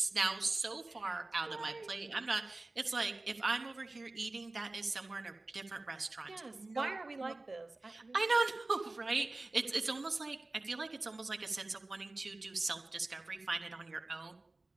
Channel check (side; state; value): left; quieter; 3.0 dB